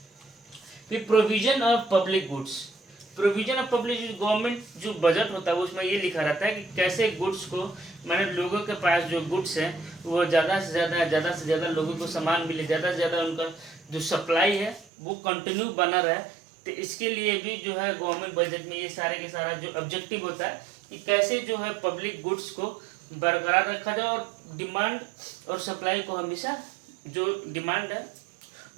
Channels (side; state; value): left; drops out; at 14.9 s